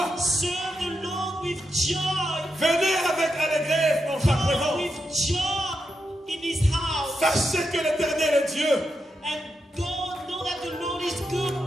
serve the Lord with joy. Venez avec allégresse dans sa Come présence. with joy in His house. Sachez que l'éternel est Dieu. And God know that the Lord is good.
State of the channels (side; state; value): both; normal; correlation 0.86